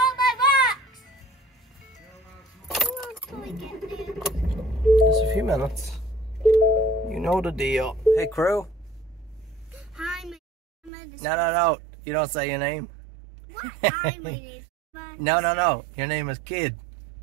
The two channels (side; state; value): left; drops out; at 10.9 s